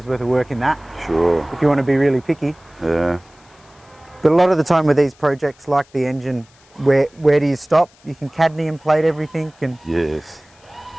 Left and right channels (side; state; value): left; noise; hiss, 30 dB below the sound